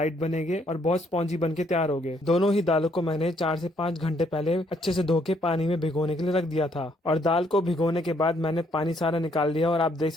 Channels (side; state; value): both; normal; correlation 0.69